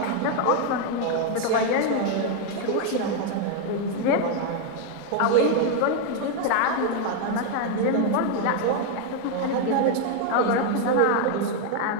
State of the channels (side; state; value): both; different; correlation 0.00